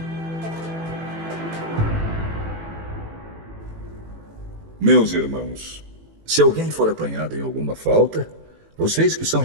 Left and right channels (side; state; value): left; late; 18 ms